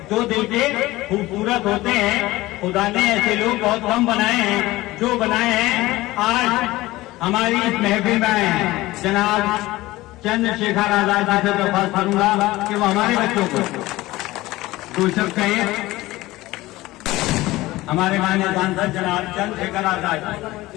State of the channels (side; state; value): right; quieter; 18.4 dB